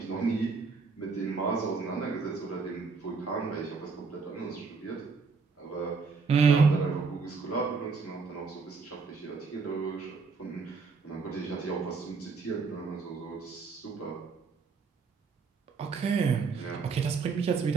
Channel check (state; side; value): quieter; left; 4.8 dB